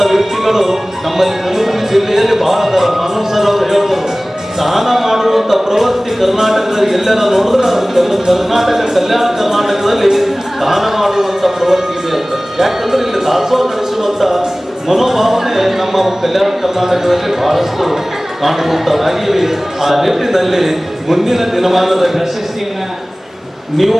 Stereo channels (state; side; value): normal; both; correlation 0.98